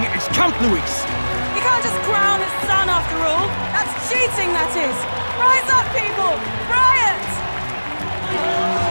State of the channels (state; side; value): inverted; both; correlation -1.00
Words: is Count Luis. You can't just crown his son after all. That's cheating, that is. Rise up, people! Riot!